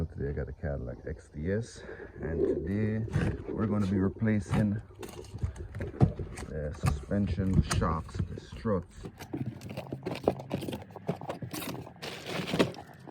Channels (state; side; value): identical; both; correlation 1.00